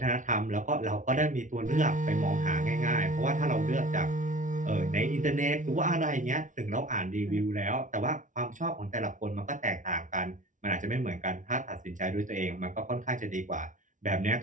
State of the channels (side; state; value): left; late; 0.37 ms